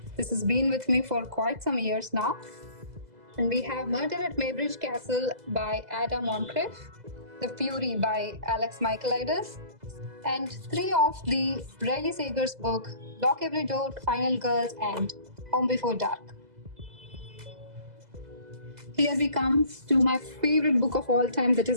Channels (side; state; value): left; late; 2.0 ms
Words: This has been with me for quite some years now. And we have Murder at Maybridge Castle by Ada Moncrief, The Fury by Alex Michaelides, and 3 of the Riley Sager's book, Lock Every Door, Final Girls, and Home Before Dark. Here we come to my favorite book of all time, that